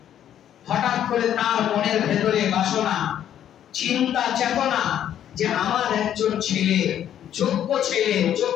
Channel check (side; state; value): right; quieter; 10.4 dB